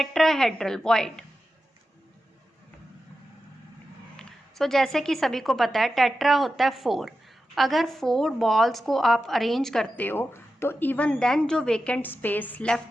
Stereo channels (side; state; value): both; normal; correlation 0.92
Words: वॉइड. सो जैसे कि सभी को पता है, टेट्रा होता है 4. अगर 4 बॉल्स को आप अरेंज करते हो तो इवन देन जो वेकेंट स्पेस